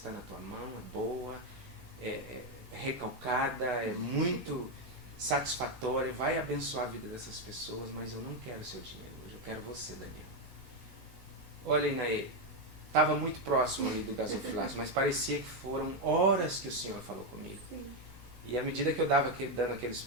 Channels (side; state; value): left; late; 15 ms